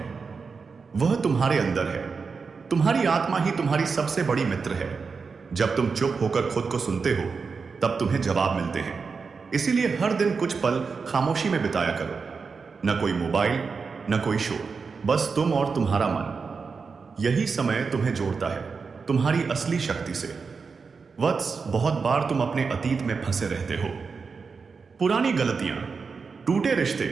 वह तुम्हारे अंदर है। तुम्हारी आत्मा ही तुम्हारी सबसे बड़ी मित्र है। जब तुम चुप होकर खुद को सुनते हो, तब तुम्हें जवाब मिलते हैं। इसीलिए हर दिन कुछ पल खामोशी में बिताया करो। न कोई मोबाइल, न कोई शोर, बस तुम और तुम्हारा मन। यही समय तुम्हें जोड़ता है तुम्हारी असली शक्ति से। वत्स, बहुत बार तुम अपने अतीत में फंसे रहते हो। पुरानी गलतियां, टूटे रिश्ते,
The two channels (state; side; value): quieter; left; 5.1 dB